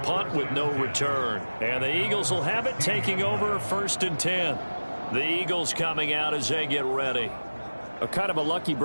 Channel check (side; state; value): both; inverted; correlation -1.00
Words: punt with no return. And the Eagles will have it, taking over 1st and 10. The Eagles coming out as they get ready. A kind of a lucky